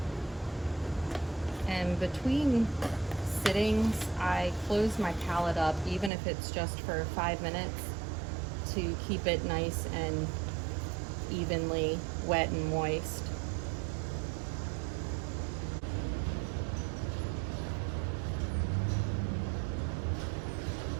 And between sittings, I close my palette up, even if it's just for 5 minutes, to keep it nice and evenly wet and moist.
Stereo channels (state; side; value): drops out; left; at 6.1 s